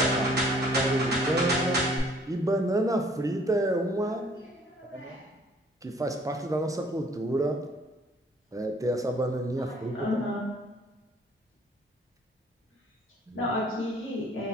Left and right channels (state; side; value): normal; both; correlation 0.58